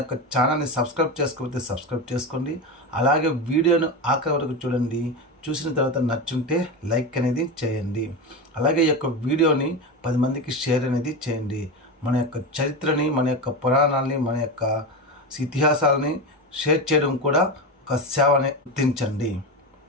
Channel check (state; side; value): normal; both; correlation 0.19